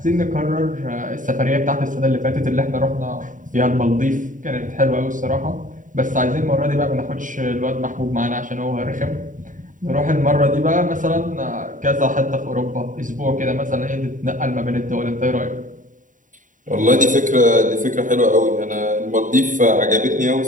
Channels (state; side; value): late; left; 0.38 ms